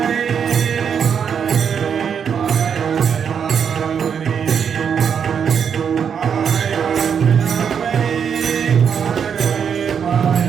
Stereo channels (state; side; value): quieter; left; 7.3 dB